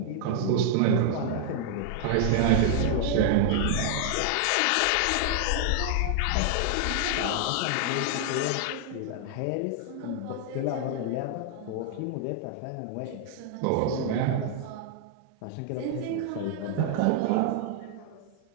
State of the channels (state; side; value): different; both; correlation 0.00